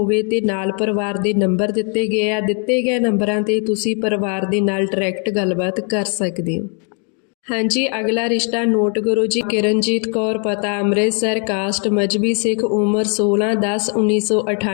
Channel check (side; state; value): right; quieter; 39.7 dB